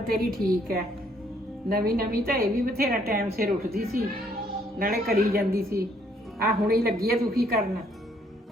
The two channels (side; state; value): both; normal; correlation 0.67